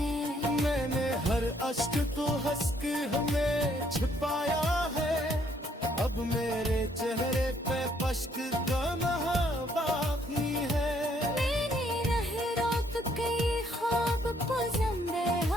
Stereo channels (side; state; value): both; normal; correlation 0.68